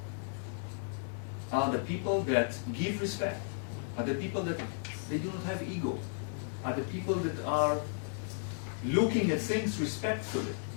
are the people that give respect, are the people that they do not have ego, are the people that are looking at things respectfully.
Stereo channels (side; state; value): right; silent; digital silence